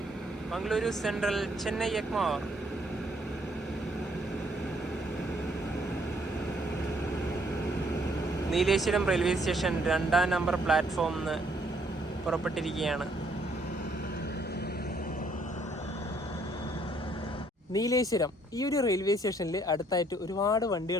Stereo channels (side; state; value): both; normal; correlation 0.67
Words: Mangaluru central, Chennai Egmore. Nileshwaram railway station 2ാം number പ്ലാറ്റ്ഫോമിൽ നിന്ന് പുറപ്പെട്ടിരിക്കുകയാണ്. നീലേശ്വരം ഈ ഒരു റെയിൽവേ സ്റ്റേഷനിൽ അടുത്തായിട്ട് ഒരുപാട്